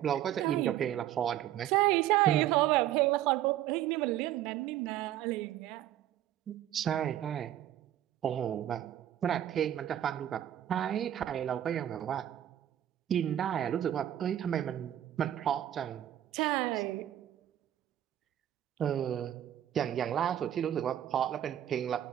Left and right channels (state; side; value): quieter; left; 11.8 dB